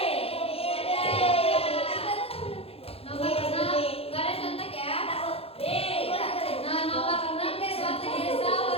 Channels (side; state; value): right; late; 0.28 ms